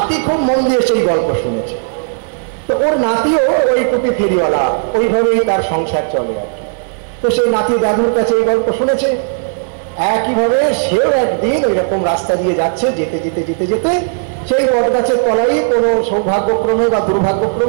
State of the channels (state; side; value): silent; left; digital silence